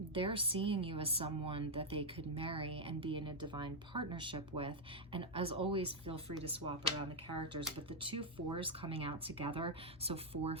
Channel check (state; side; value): normal; both; correlation -0.02